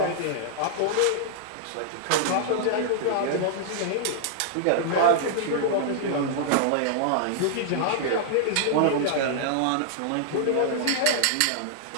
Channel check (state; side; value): different; both; correlation -0.01